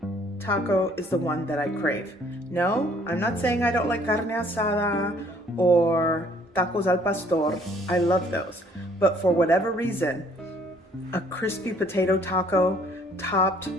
taco is the one that I crave. No, I'm not saying I don't like carne asada or tacos al pastor. I love those. But for whatever reason, a crispy potato taco topped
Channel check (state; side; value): normal; both; correlation 0.60